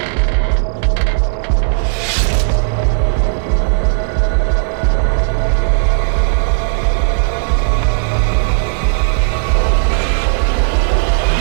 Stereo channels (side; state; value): left; silent; digital silence